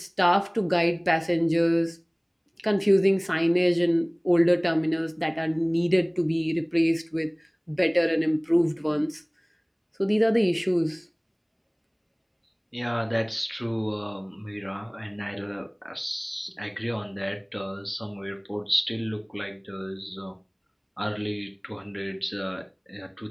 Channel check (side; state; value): both; identical; correlation 1.00